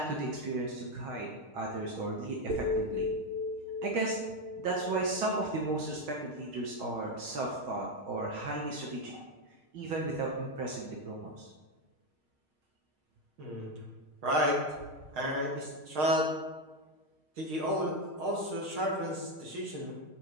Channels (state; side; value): late; left; 6.5 ms